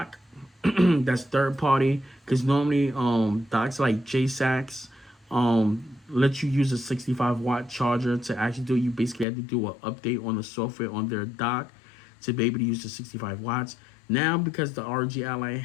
that's third party, because normally docks like JSAX let you use a 65 watt charger to actually do it. You basically have to do an update on the software on their dock to be able to use the 65 watts. Now, because the ROG Ally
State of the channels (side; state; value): right; drops out; at 9.2 s